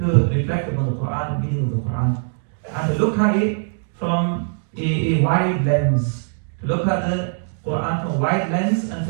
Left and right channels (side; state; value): left; silent; digital silence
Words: reflect upon the Quran, the meaning of the Quran, and to look at it from a wide lens, to look at the Quran from a wide lens and